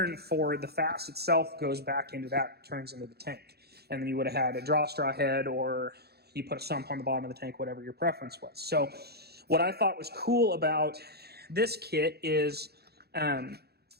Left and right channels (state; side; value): late; left; 0.47 ms